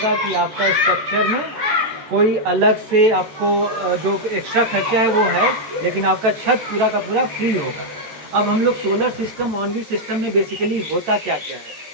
कि आपका स्ट्रक्चर में कोई अलग से आपको जो एक्स्ट्रा खर्चा है वो है, लेकिन आपका छत पूरा का पूरा फ्री होगा। अब हम लोग solar system, on grid system में बेसिकली होता क्या क्या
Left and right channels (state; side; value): late; left; 14 ms